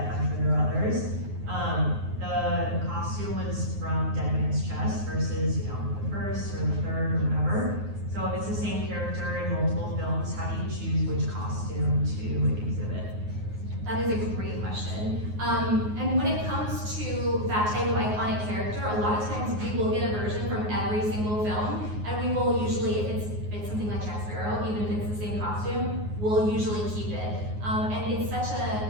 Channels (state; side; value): late; left; 9.5 ms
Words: sure there are others. The costume was from Dead Man's Chest versus, you know, the first or the third or whatever. So if it's the same character in multiple films, how do you choose which costume to exhibit? That is a great question. And when it comes to that type of iconic character, a lot of times we will get a version from every single film, and we will usually, if it's something like Jack Sparrow, even if it's the same costume, we'll usually keep it. And it's such